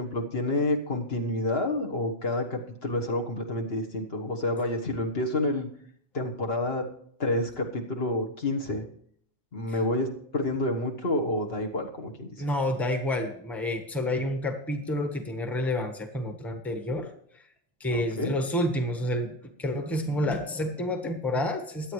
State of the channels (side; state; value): both; normal; correlation 0.04